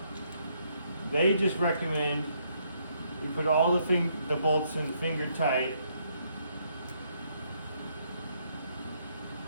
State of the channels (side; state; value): both; inverted; correlation -0.72